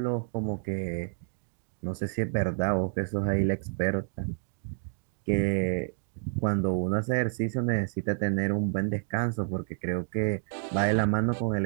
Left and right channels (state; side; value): silent; left; digital silence